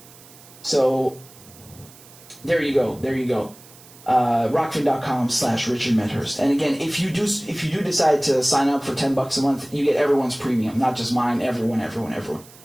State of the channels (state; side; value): noise; right; hiss, 22 dB below the sound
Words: So, there you go. Rockfin.com/Richard Medhurst. And again, if you do decide to sign up for $10 a month, you get everyone's premium, not just mine. Everyone. I